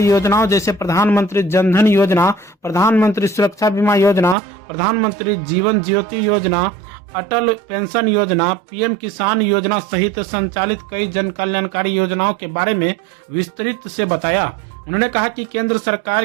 योजनाओं जैसे प्रधानमंत्री जन धन योजना, प्रधानमंत्री सुरक्षा बीमा योजना, प्रधानमंत्री जीवन ज्योति योजना, अटल पेंशन योजना, PM किसान योजना सहित संचालित कई जन कल्याणकारी योजनाओं के बारे में विस्तृत से बताया। उन्होंने कहा कि केंद्र सरकार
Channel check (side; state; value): left; drops out; at 4.4 s